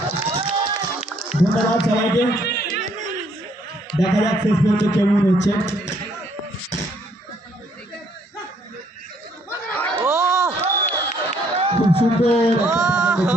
ধন্যবাদ সবাইকে। দেখা যাক শেষ পর্যন্ত কেমন হচ্ছে। খুব সুন্দর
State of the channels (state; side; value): normal; both; correlation 0.67